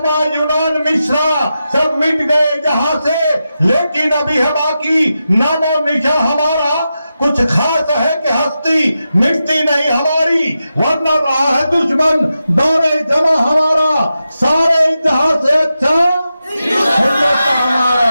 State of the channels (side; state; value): both; inverted; correlation -0.90